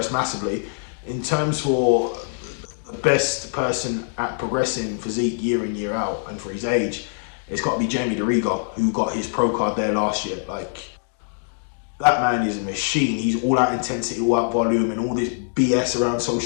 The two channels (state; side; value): silent; right; 63 dB below the other